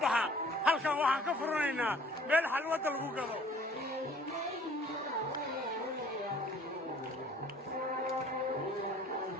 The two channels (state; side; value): normal; both; correlation 0.53